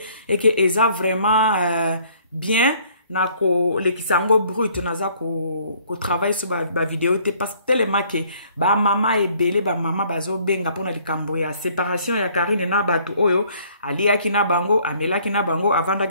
et que eza vraiment bien na ko lekisango brut naza ko travail sur ba vidéo te parce que tellement que ba mama ebele ba mama bazo benga pona likambo ya séparation ya Karine na batu oyo aliaki na bango amelaki na bango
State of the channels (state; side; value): inverted; both; correlation -0.60